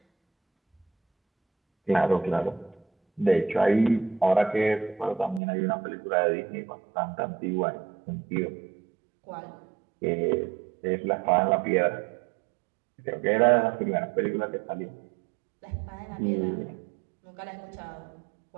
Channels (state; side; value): drops out; left; at 5.4 s